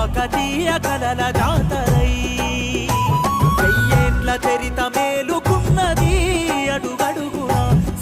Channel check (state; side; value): identical; both; correlation 1.00